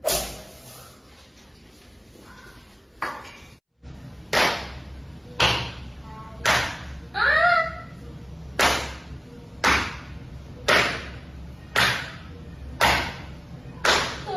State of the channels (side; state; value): both; identical; correlation 1.00